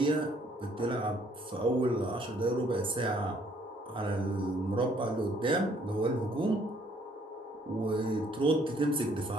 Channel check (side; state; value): both; normal; correlation 0.63